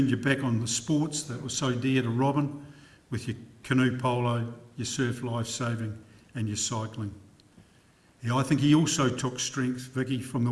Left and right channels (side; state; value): both; identical; correlation 1.00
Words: your back on the sports that were so dear to Robin, with your canoe polo, your surf lifesaving and your cycling. Yeah, I think he also took strength, Vicky, from the